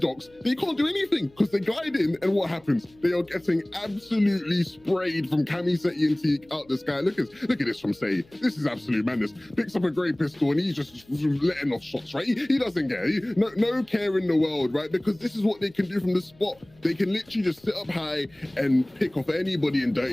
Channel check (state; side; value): noise; left; hum, 29 dB below the sound